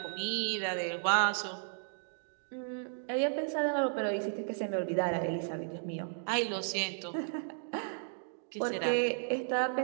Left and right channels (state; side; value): silent; left; digital silence